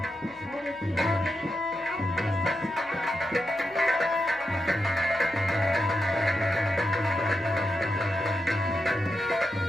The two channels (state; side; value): noise; left; hum, 29 dB below the sound